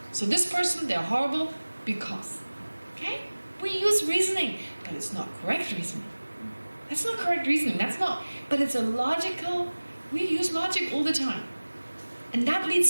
So this person, they're horrible because. Okay? We use reasoning, but it's not correct reasoning. That's not correct reasoning. That's not, but it's a logical, we use logic all the time. And that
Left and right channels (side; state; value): both; inverted; correlation -1.00